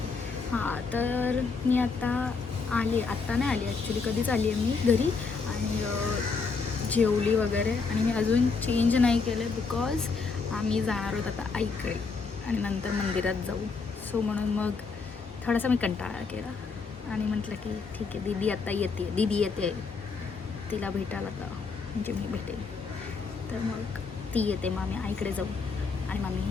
हां, तर मी आता नाही आली ॲक्च्युली, कधीच आली आहे मी घरी. आणि जेवली वगैरे, आणि मी अजून चेंज नाही केलं बिकॉज आम्ही जाणार आहोत आता आईकडे आणि नंतर मंदिरात जाऊ. सो म्हणून मग थोडासा मी कंटाळा केला आणि म्हटलं की ठीक आहे, दीदी येते तिला भेटायला, आता म्हणजे मी भेटेल. तर मग ती येते, मग आम्ही आईकडे जाऊ आणि मग आम्ही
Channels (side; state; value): right; quieter; 4.7 dB